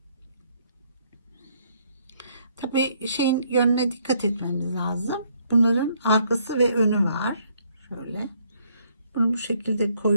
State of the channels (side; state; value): both; inverted; correlation -0.68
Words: Tabii şeyin yönüne dikkat etmemiz lazım. Bunların arkası ve önü var. Şöyle. Bunu bu şekilde